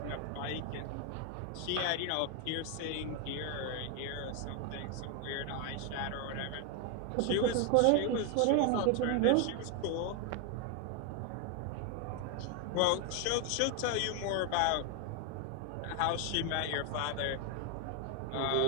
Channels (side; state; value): both; different; correlation 0.01